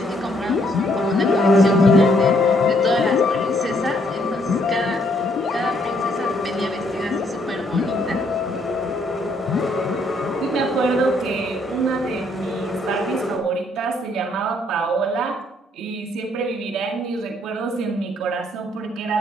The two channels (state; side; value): normal; both; correlation 0.69